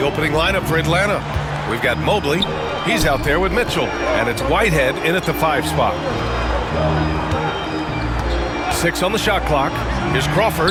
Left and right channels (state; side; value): identical; both; correlation 1.00